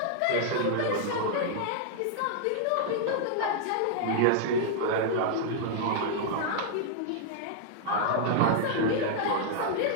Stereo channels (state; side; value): different; both; correlation -0.01